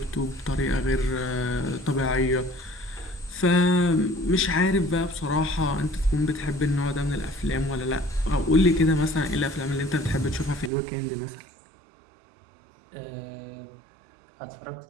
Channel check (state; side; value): drops out; left; at 10.7 s